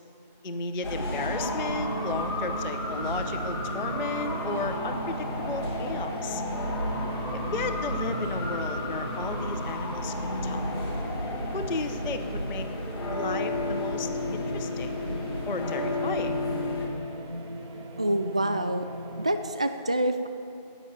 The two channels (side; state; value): both; inverted; correlation -0.47